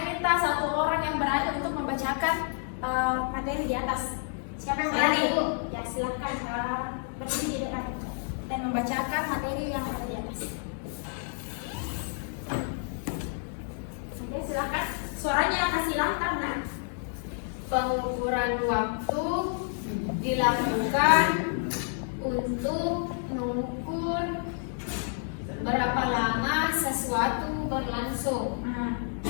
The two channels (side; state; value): right; silent; 58 dB below the other